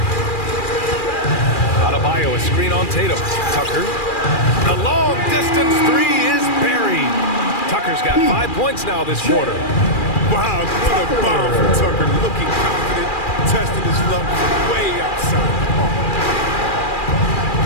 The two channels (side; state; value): right; late; 2.4 ms